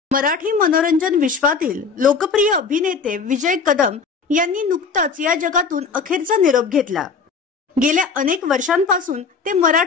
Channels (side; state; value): right; quieter; 5.2 dB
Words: मराठी मनोरंजन विश्वातील लोकप्रिय अभिनेते विजय कदम यांनी नुकताच या जगातून अखेरचा निरोप घेतला। गेल्या अनेक वर्षांपासून ते